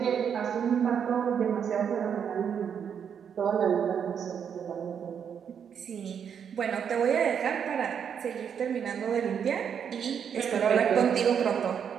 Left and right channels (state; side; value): quieter; left; 7.7 dB